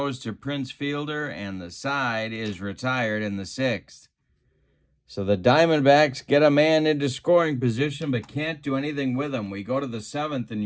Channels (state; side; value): identical; both; correlation 1.00